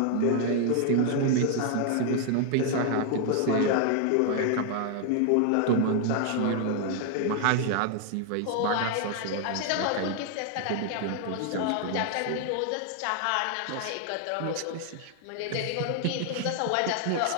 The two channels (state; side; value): different; both; correlation 0.00